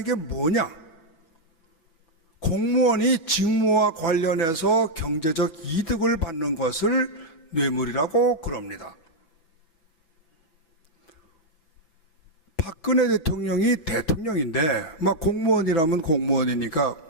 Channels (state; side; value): late; right; 6.0 ms